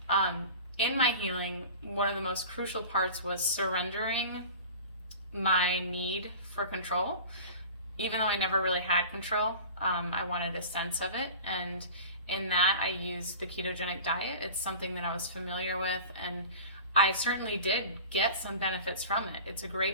In my healing, one of the most crucial parts was surrendering my need for control. Even though I never really had control, I wanted a sense of it. And in that, I used the ketogenic diet. It's something that I was familiar with, and I certainly did get some benefits from it. It's a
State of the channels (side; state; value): both; inverted; correlation -0.37